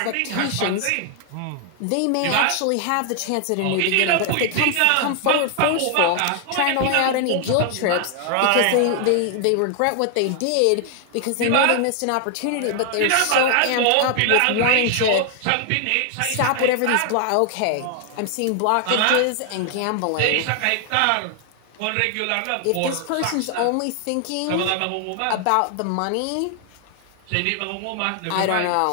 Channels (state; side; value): different; both; correlation 0.00